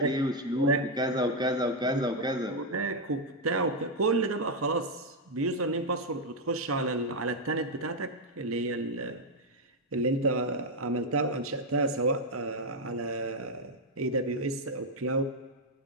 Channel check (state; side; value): normal; both; correlation 0.01